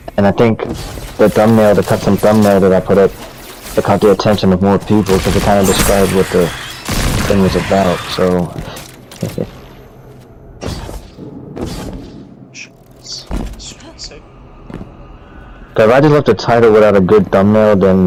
And I think the thumbnail, the custom thumbnail that I put up, it caught the attention of more people because it kind of described what the thing was about, so... Cause if I just left the title without a good thumbnail,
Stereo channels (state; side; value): identical; both; correlation 1.00